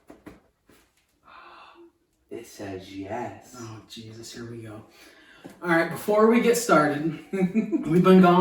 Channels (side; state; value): both; identical; correlation 1.00